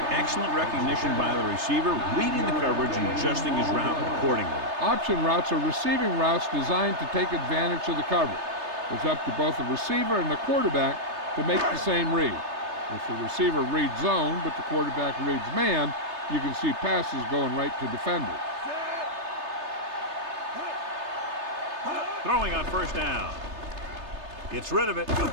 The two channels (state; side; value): late; left; 3.3 ms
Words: Excellent recognition by the receiver, reading the coverage and adjusting his route accordingly. Option routes are receiving routes designed to take advantage of the coverage. It's up to both the receiver and the quarterback to make the same read. If the receiver reads zone, but the quarterback reads man, you can see passes going right to defenders. Throwing on first down. Gets rid of it.